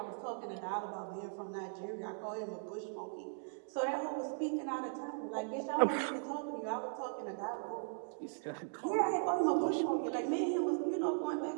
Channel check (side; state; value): left; silent; digital silence